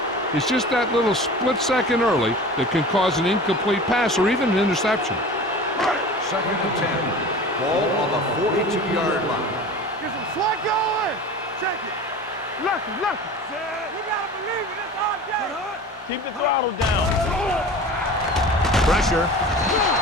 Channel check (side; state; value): both; normal; correlation 0.37